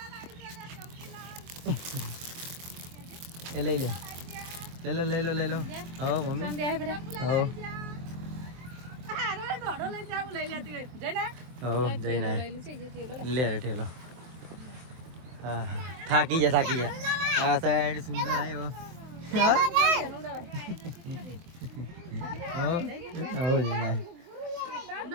એ લઈ લો હા મમ્મી જઈને લે રે ઠેલો. હા થાકી જા આ સાઈડ સુંદર આવ્યો.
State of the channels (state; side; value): late; left; 23 ms